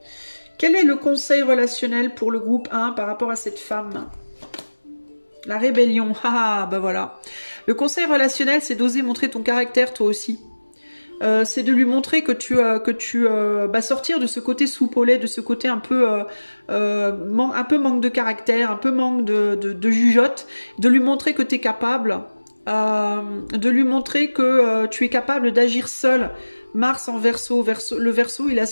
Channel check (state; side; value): inverted; both; correlation -1.00